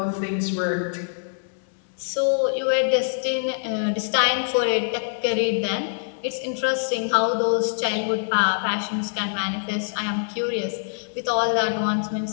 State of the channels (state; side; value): silent; right; digital silence